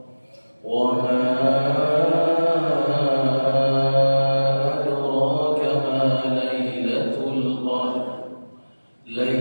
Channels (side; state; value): both; inverted; correlation -1.00